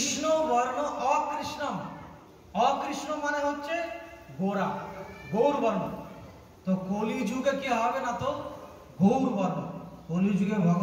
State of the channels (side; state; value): both; identical; correlation 1.00